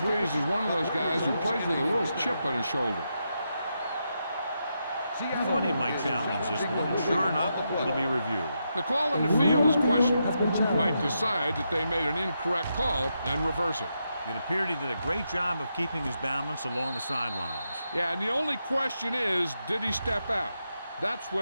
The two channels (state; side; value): inverted; both; correlation -0.84